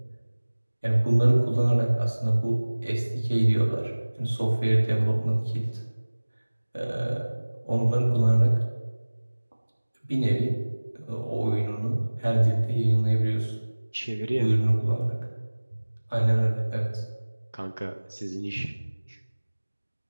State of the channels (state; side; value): inverted; both; correlation -1.00